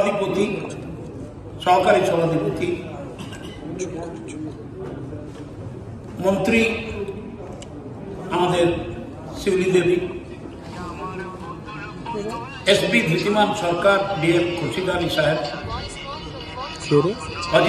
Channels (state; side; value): identical; both; correlation 1.00